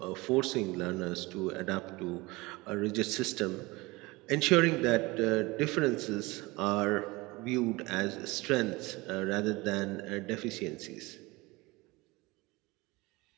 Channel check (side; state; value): left; quieter; 22.7 dB